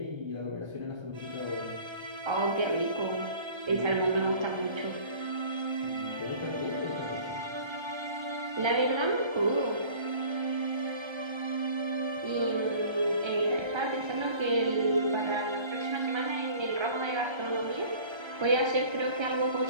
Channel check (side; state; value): left; late; 1.3 ms